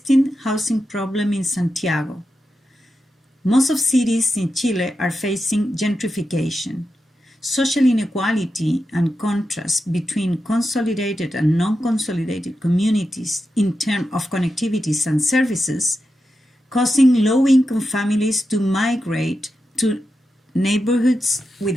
housing problem in Santiago. Most of cities in Chile are facing gentrification. Social inequality and contrast between consolidated and non-consolidated communities in terms of connectivities and services, causing low-income families to migrate to neighborhoods with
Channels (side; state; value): both; normal; correlation 0.89